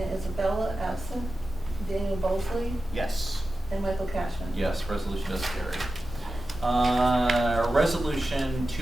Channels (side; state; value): both; normal; correlation 0.93